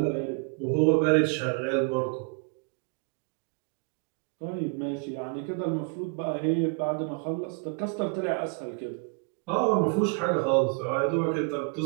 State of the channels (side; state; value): left; quieter; 36.4 dB